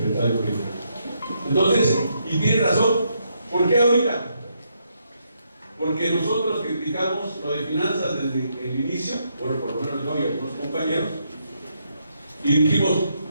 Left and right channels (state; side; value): inverted; both; correlation -0.77